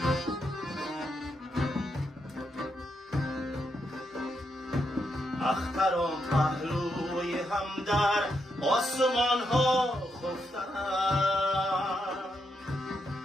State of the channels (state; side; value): normal; both; correlation 0.81